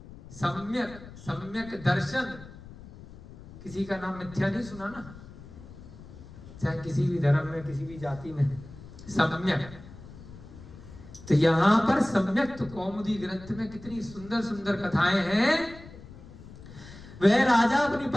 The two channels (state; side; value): noise; left; rumble, 17 dB below the sound